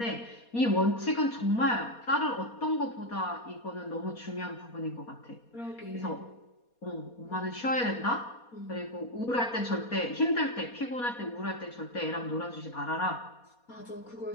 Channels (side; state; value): right; late; 4.2 ms